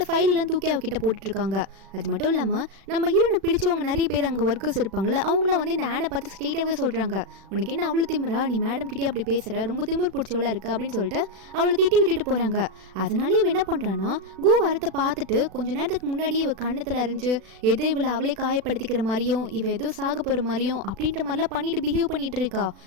ஃபைல் எல்லாம் தூக்கி அவகிட்ட போட்டுட்டு இருக்காங்க. அது மட்டும் இல்லாமல் நம்ம ஹீரோனை பிடிச்சவங்க நிறைய பேர் அங்கே ஒர்க்கர்ஸ் இருப்பாங்களே அவங்கள வந்து இந்த ஆனை பார்த்து ஸ்ட்ரெயிட்டாகவே சொல்கிறாங்க, உனக்கு என்ன அவ்வளோ திமிரா, நீ மேடம் கிட்டே அப்படி பேசுகிற, ரொம்ப திமிர் பிடிச்சவளா இருக்கு அப்படின்னு சொல்லிட்டு அவளை திட்டி விட்டுட்டு போகிறாங்க. அதனாலே இவ என்ன பண்ணுறான்னா கு வரத்தை பார்த்துட்டு கொஞ்ச நேரத்துக்கு முன்னாடியே இவ கண்ணத்தில் அறிஞ்சு எதோ இவளை அவளே காயப்படுத்திக்கிற மாதிரியும் இவ ஏதோ சாக போகிற மாதிரியும் அப்படின்ற மாதிரிலாம் பண்ணிட்டு பிஹேவ் பண்ணிட்டு இருக்கா.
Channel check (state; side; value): late; left; 36 ms